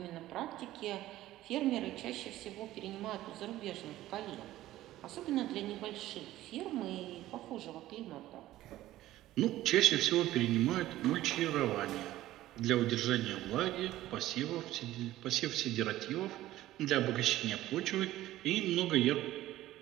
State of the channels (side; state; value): left; quieter; 15.1 dB